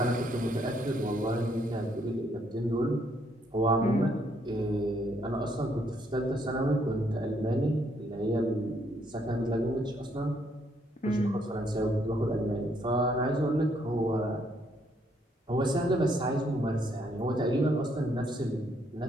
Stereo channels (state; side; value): normal; both; correlation 0.71